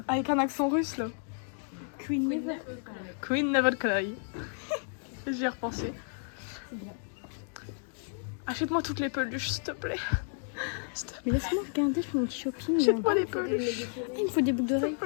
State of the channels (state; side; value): silent; right; 57 dB below the other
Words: Avec un accent russe là. Queen Never. Queen Never Cry. J'y ai repensé. Achète-moi toutes les peluches, s'il te plaît. Mais laisse-moi regarder, je fais mon petit shopping. Achète-moi les peluches. Il me faut des boucles S'il d'oreilles. te